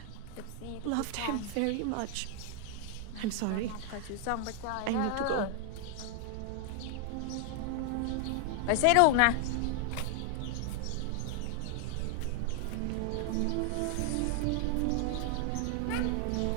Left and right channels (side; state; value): both; different; correlation 0.00